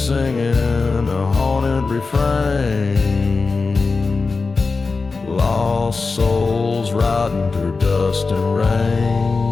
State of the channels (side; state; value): right; quieter; 4.2 dB